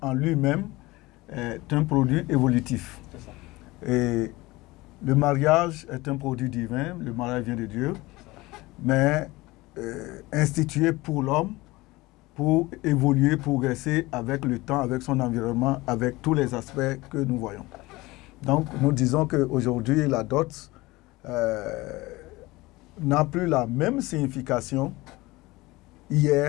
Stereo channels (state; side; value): quieter; right; 20.7 dB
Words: en lui-même est un produit évolutif. Et le mariage est un produit divin, le mariage vient de Dieu, mais institué pour l'homme, pour évoluer, progresser avec le temps, avec son environnement, avec tous les aspects que nous voyons. Donc nous disons qu'aujourd'hui la dot n'a plus la même signification